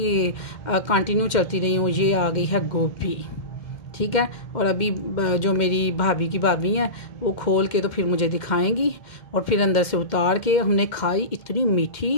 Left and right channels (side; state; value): right; late; 2.1 ms